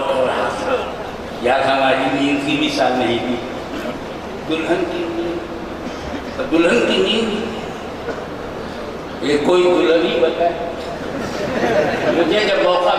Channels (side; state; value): both; identical; correlation 1.00